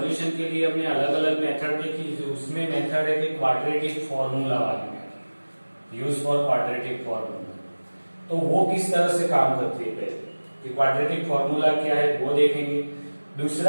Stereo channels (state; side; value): inverted; both; correlation -1.00